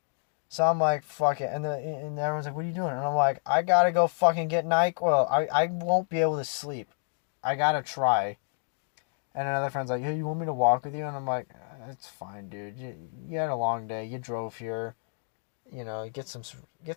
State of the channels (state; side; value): silent; right; digital silence